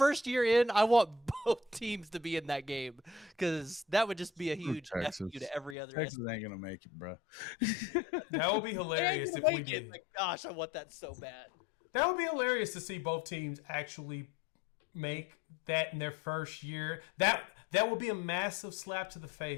year in, I want both teams to be in that game, because that would just be a huge F you to every other. Texas ain't gonna make it, bro. That would be hilarious if we did. Like, gosh, I want that so bad. That would be hilarious to see both teams actually make that in their first year. That would be a massive slap to the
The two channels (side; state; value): right; drops out; at 5.8 s